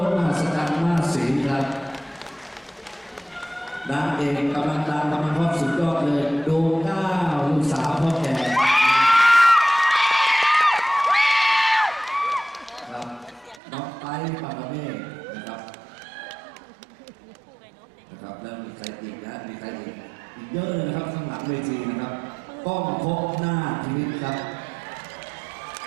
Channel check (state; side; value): drops out; left; at 13.6 s